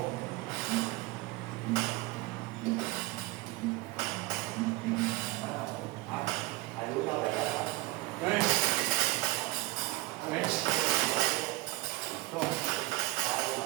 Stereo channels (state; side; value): quieter; left; 20.5 dB